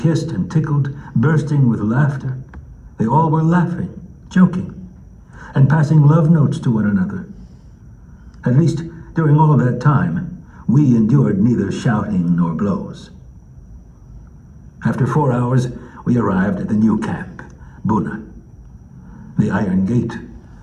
and tickled, bursting with laughter. They all were laughing, joking, and passing love notes to one another. At least, during all that time, we endured neither shouting nor blows. After 4 hours, we arrived at the new camp, Buna. The iron gate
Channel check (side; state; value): both; identical; correlation 1.00